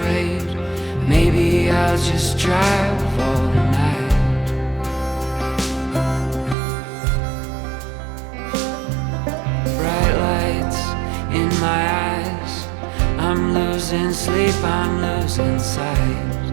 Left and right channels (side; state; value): left; drops out; at 6.6 s